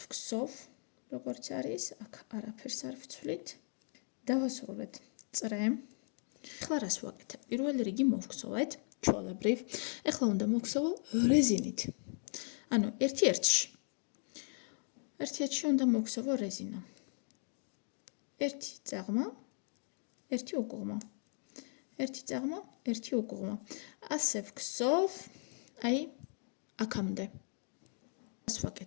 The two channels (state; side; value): silent; right; 53 dB below the other